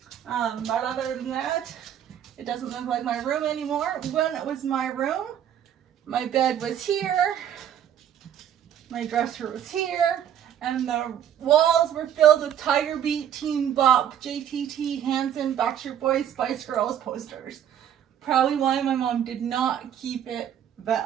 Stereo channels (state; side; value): quieter; left; 9.8 dB